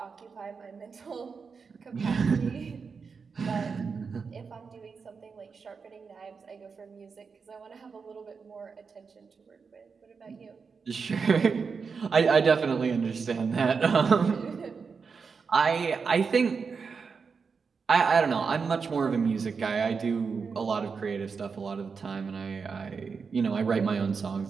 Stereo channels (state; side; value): quieter; left; 5.4 dB